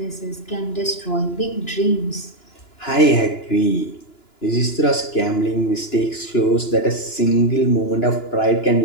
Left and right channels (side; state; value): right; late; 2.9 ms